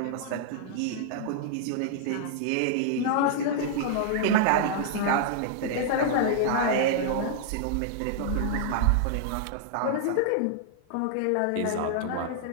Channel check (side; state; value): both; different; correlation -0.01